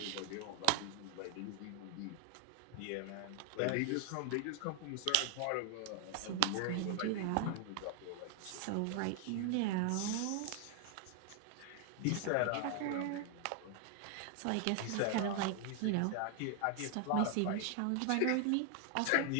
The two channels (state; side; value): different; both; correlation 0.00